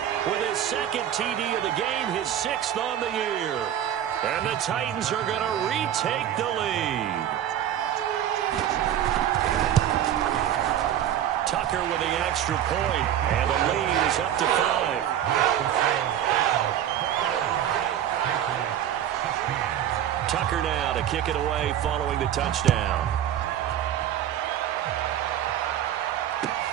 With his 2nd TD of the game, his 6th on the year. And the Titans are going to retake the lead. Tucker with the extra point, and the lead is up to 5. Tucker now to kick it away following the touchdown.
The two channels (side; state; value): left; quieter; 10.8 dB